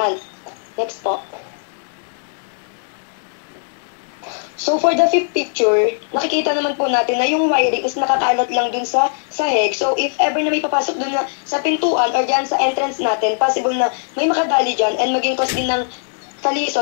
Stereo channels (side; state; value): right; silent; digital silence